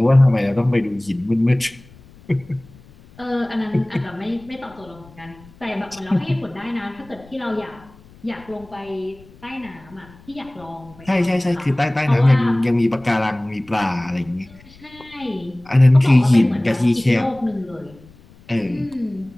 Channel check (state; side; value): noise; left; rumble, 24 dB below the sound